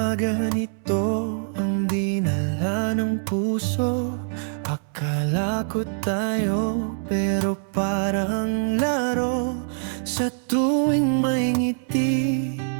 ganito ang dinala ng puso? Akala ko tayo pero parang laro. Sa tuwing may ngiti,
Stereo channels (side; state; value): left; silent; 62 dB below the other